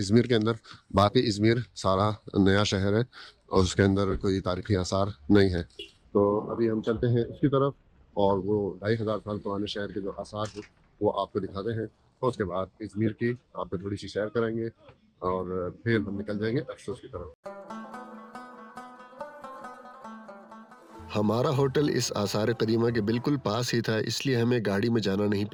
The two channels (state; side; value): identical; both; correlation 1.00